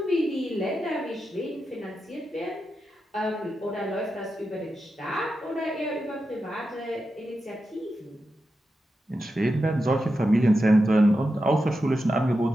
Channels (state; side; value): normal; both; correlation 0.89